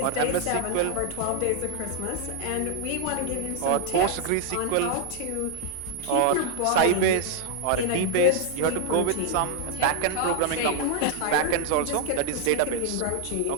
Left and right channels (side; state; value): both; different; correlation 0.00